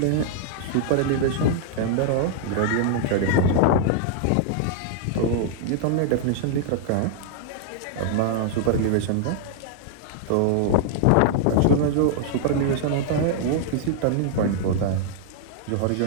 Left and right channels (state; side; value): different; both; correlation -0.01